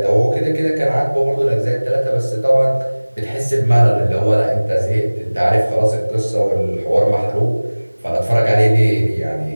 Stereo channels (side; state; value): both; inverted; correlation -1.00